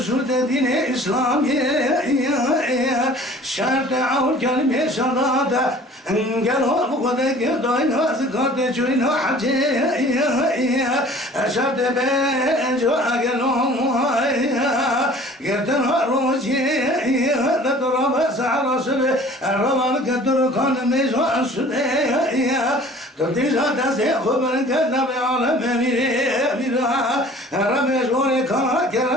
şu dediğine İslamiye şart avul kelime şadada engel bu kadege dayna zikate çuyna hacı şart ben jo agelom yerden roji da toraba sahra sebe ramal kadur kan mezo sude Tadizada se khabar kadna be alam mira rame jore kama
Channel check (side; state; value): both; normal; correlation 0.48